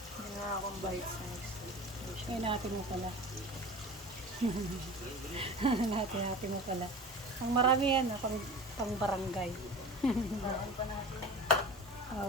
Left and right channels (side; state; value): both; normal; correlation 0.35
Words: nga akong bite size. Ay, natin mo pala. Natin mo pala. Ang marami yan, pang barangay. Bawal pa natin.